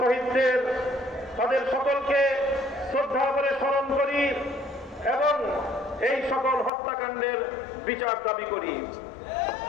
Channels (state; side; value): drops out; right; at 6.7 s